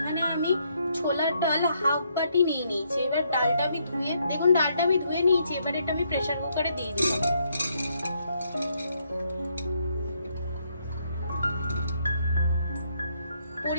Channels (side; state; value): both; inverted; correlation -0.74